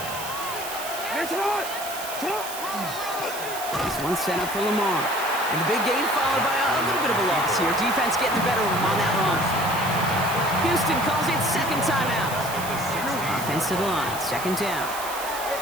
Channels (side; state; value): right; noise; hiss, 9 dB below the sound